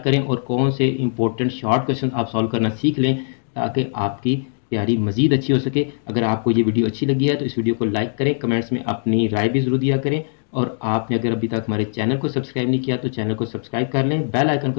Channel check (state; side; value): silent; right; digital silence